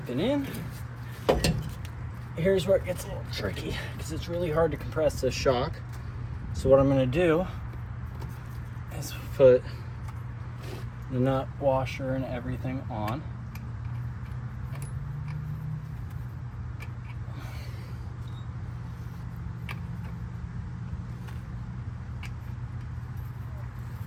and in. Here's where it gets a little tricky because it's really hard to compress this shock. So what I'm going to do is put the nut washer and everything on.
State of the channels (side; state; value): both; identical; correlation 1.00